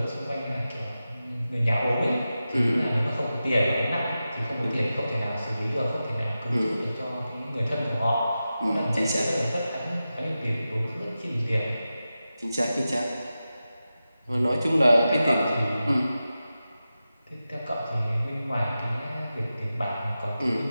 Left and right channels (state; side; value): inverted; both; correlation -0.93